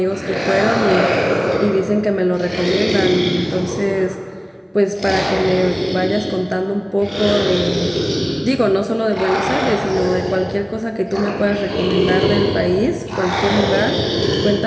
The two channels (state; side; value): identical; both; correlation 1.00